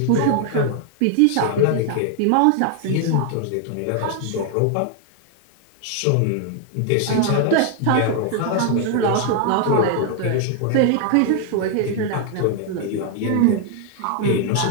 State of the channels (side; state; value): both; different; correlation 0.00